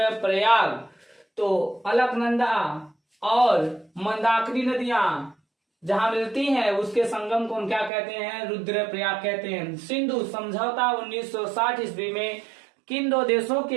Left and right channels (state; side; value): drops out; left; at 7.9 s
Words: तो अलकनंदा और मंदाकिनी नदियां जहां मिलती हैं उसके संगम को हम क्या कहते हैं? रुद्रप्रयाग कहते हैं। सिंधु समझौता 1960 ईस्वी में किन 2 देशों